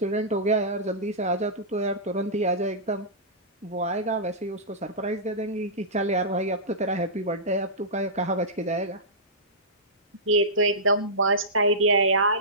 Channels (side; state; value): both; normal; correlation -0.17